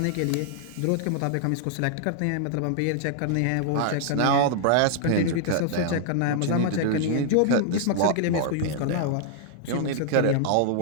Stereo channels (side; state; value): both; different; correlation -0.01